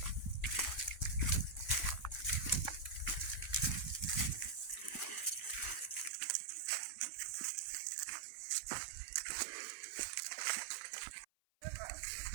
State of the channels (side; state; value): left; drops out; at 6.1 s